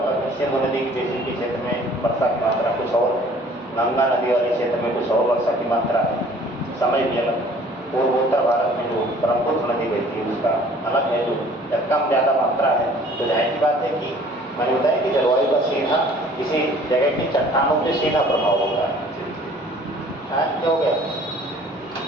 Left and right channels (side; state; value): both; normal; correlation 0.53